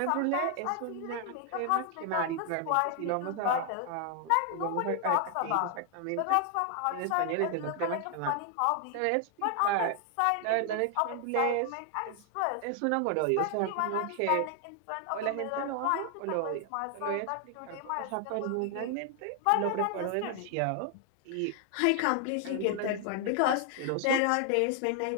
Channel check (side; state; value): both; different; correlation 0.00